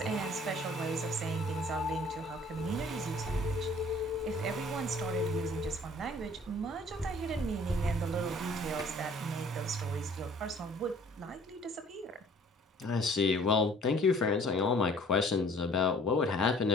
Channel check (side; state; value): both; normal; correlation 0.54